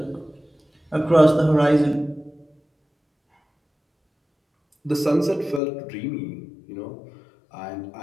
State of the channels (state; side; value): drops out; right; at 5.6 s